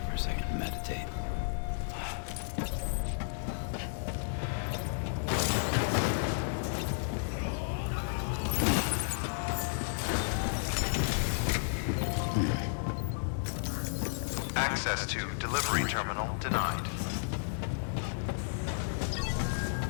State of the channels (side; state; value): right; silent; 56 dB below the other